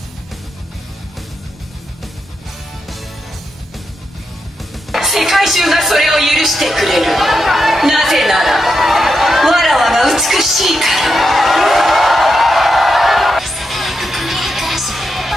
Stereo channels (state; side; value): normal; both; correlation 0.85